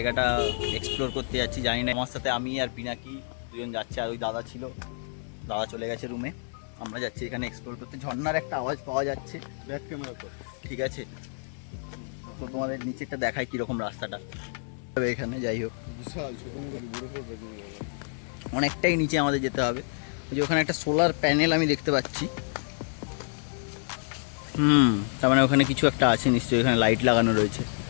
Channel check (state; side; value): silent; right; 59 dB below the other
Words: এক্সপ্লোর করতে যাচ্ছি। জানি না, আমার সাথে আমি আর পিনাকি দুজন যাচ্ছে, আর ওই দাদা ছিল, দাদা চলে গেছে রুমে। আমরা যাচ্ছি এখানে এক্সপ্লোর করতে। ঝর্ণার একটা আওয়াজ পাওয়া যাচ্ছে, ব্যাক ক্যামেরা তো ঠিক আছে। তো তোমাদের নিচেরটা দেখায় কীরকম রাস্তাটা এখানে। যাই হোক, অনেকটাই নিচে আমাদের যেতে হবে। যে ওখানে একটা সোলার প্যানেল আমি দেখতে পাচ্ছি। তার মানে ওখানে কিছু একটা আছে নিশ্চয়ই, এখানে লাইট লাগানো রয়েছে।